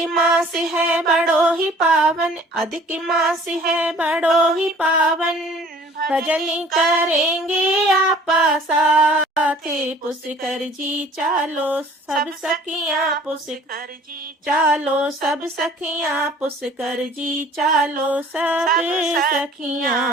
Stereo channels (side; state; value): both; normal; correlation 0.52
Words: मास है बड़ो ही पावन, अधिक मास है बड़ो ही पावन, भजन करेंगे आपा साथ। पुष्कर जी चालो सब सखियां, पुष्कर जी चालो सब सखियां, पुष्कर जी चालो सब